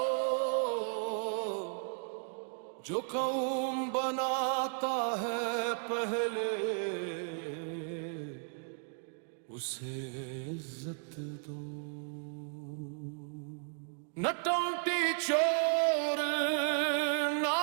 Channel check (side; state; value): left; silent; 55 dB below the other